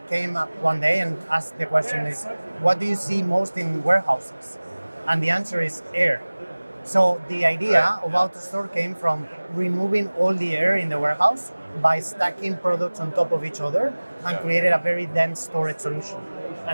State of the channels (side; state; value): both; inverted; correlation -1.00